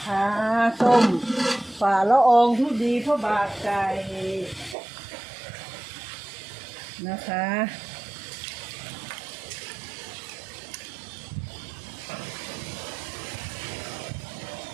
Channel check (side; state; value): left; drops out; at 4.8 s